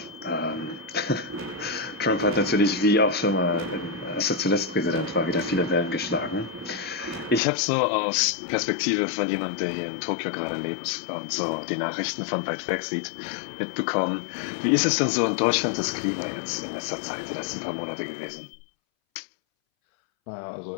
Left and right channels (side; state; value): right; drops out; at 7.4 s